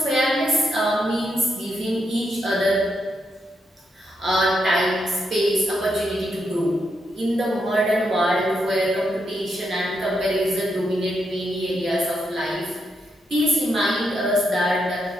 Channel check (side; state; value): both; normal; correlation 0.81